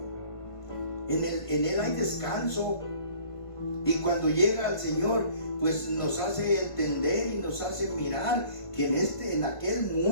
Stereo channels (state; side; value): late; right; 1.5 ms